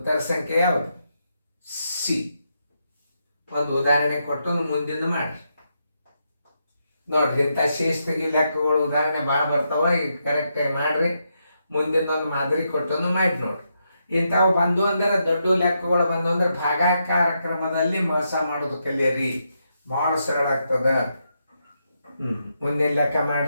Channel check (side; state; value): both; inverted; correlation -0.82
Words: ಸಂಖ್ಯೆ ಯಾವುದು? ಸಿ. ಒಂದು ಉದಾಹರಣೆ ಕೊಟ್ಟು ಮುಂದಿನ ಮಾಡಿ ನೋಡ್ರಿ. ಇಂಥ ಶೇಷ ತೆಗಿ ಲೆಕ್ಕಗಳು ಉದಾಹರಣೆ ಭಾಳ ಬರ್ತಾವ. ಈಗ ಕರೆಕ್ಟಾಗಿ ಮಾಡ್ರಿ. ಮುಂದಿನೊಂದು ಮಾದರಿ ಕೊಟ್ಟು ಮಾಡಿ ನೋಡ್ರಿ. ಇಂಥವು ಬಂದು ಅಂದ್ರೆ ದೊಡ್ಡ ಲೆಕ್ಕಗಳು ಬಂದು ಅಂದ್ರೆ ಭಾಗಾಕಾರ ಕ್ರಮದಲ್ಲಿ ಮೋಸ ಮಾಡೋದು ಕಲಿಯರಿ. ಭಾಳ ಸರಳ ಆಗ್ತದ. ಮುಂದಿನ ಲೆಕ್ಕ